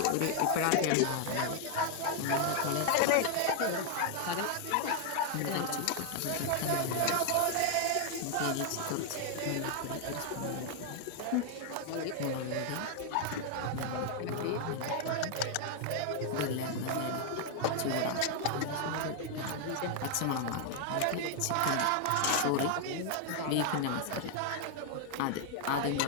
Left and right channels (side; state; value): both; different; correlation 0.00